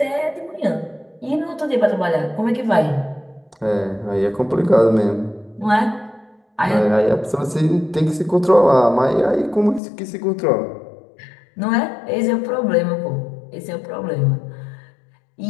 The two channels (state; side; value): drops out; right; at 9.8 s